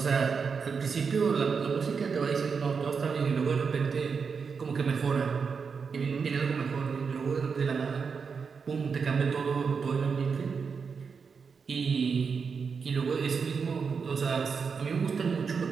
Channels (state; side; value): quieter; left; 5.7 dB